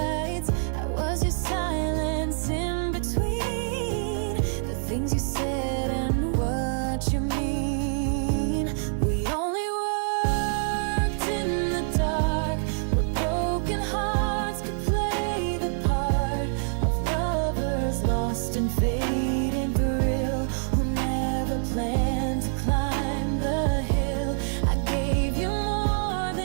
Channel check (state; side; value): silent; left; 61 dB below the other